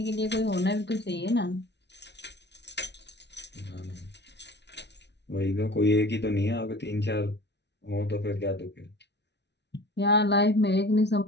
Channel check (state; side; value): late; right; 0.50 ms